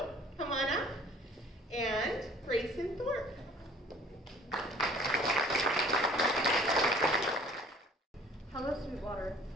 come on up, and Grayson Thorpe. Hello, Sweetwater.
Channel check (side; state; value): both; normal; correlation 0.52